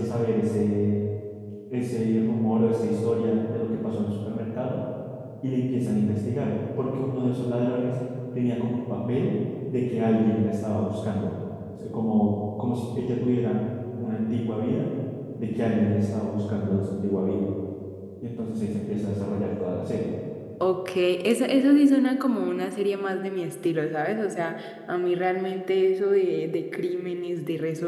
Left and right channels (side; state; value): both; identical; correlation 1.00